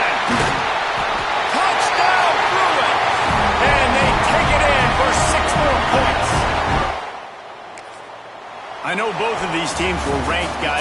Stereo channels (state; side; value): identical; both; correlation 1.00